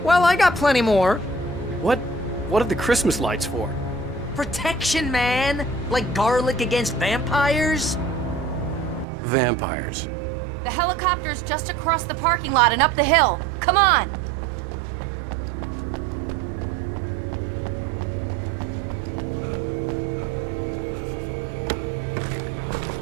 Well, I got plenty more. What are the Christmas lights for? Protection, man! Like garlic against vampires? Vampires. The helicopter's just across the parking lot and up the hill. Come on!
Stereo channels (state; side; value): drops out; left; at 9.1 s